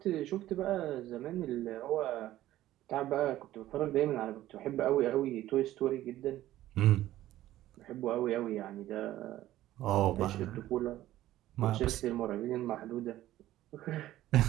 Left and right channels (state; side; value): quieter; left; 14.4 dB